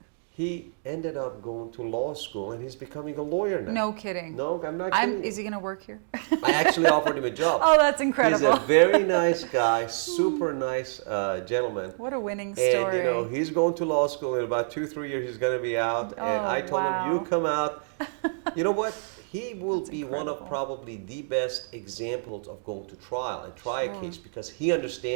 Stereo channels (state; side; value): silent; left; digital silence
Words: He ended up going to law school, and he's becoming a lawyer now. No kidding. No, I'm not kidding. Is he going to work here? I actually offered him a job. Oh, that's incredible. He's a very nice guy, super nice gentleman. What a winning story. And he's going to law school in about 2-3 years. He's going to be out. And I told him, you come out. You know what? He will be one of probably the best examples of going to trial and try a case because he